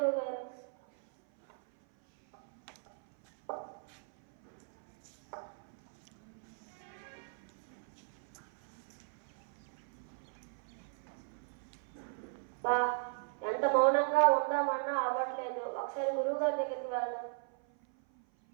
గారు. బా, ఎంత మౌనంగా ఉందామన్నా అవ్వట్లేదు. ఒకసారి గురువు గారి దగ్గరికి వెళ్దాం.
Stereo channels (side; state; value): left; silent; 53 dB below the other